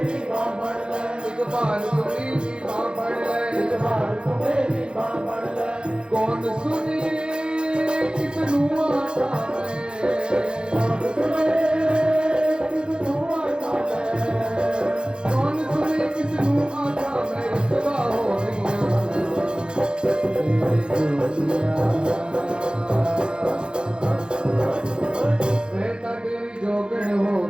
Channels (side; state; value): left; late; 0.050 ms